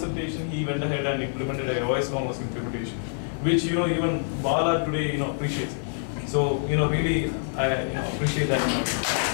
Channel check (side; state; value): right; silent; digital silence